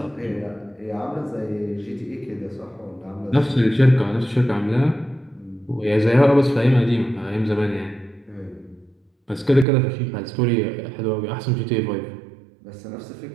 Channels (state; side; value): drops out; left; at 9.7 s